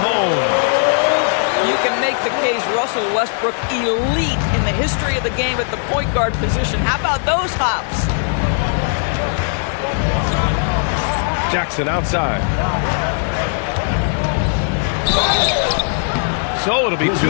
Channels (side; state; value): right; silent; 59 dB below the other